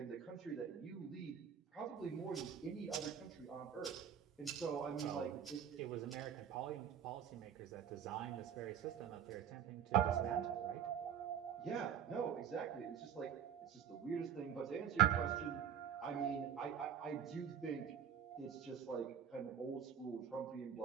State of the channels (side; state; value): left; quieter; 8.6 dB